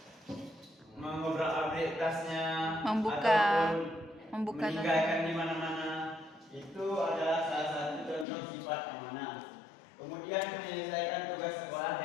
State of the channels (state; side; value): drops out; right; at 8.2 s